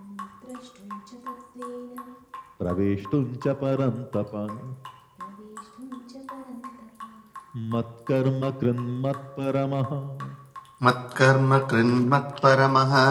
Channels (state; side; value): identical; both; correlation 1.00